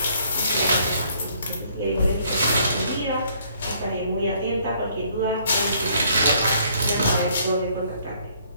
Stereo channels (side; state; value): both; inverted; correlation -0.63